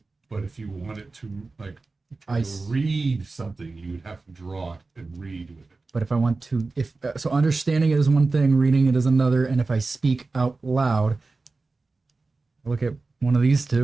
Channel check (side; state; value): left; quieter; 3.7 dB